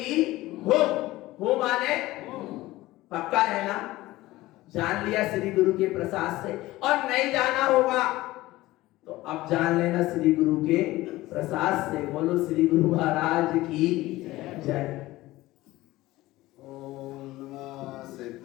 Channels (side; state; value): right; quieter; 17.9 dB